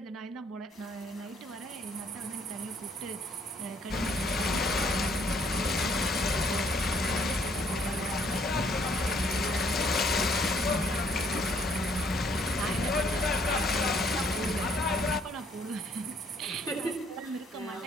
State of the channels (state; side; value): normal; both; correlation 0.65